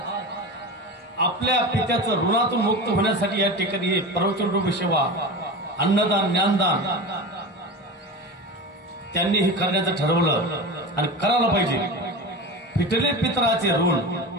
आपल्या पित्याचं ऋणातून मुक्त होण्यासाठी या ठिकाणी हे प्रवचन रूप सेवा, अन्नदान, ज्ञानदान त्यांनी हे करण्याचं ठरवलं आणि करायला पाहिजे. फिटले पितराचे ऋण,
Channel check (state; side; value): normal; both; correlation 0.28